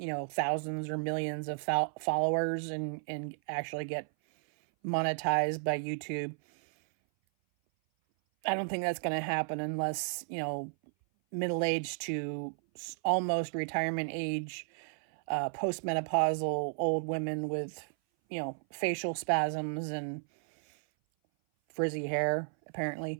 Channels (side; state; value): left; silent; 56 dB below the other